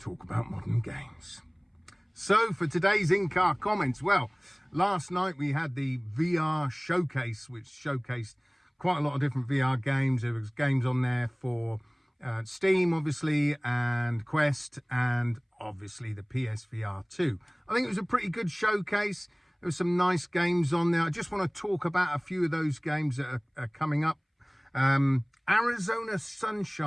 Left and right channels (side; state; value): both; identical; correlation 1.00